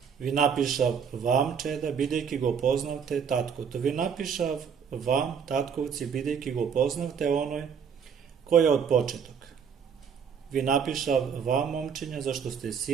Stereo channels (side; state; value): left; quieter; 7.0 dB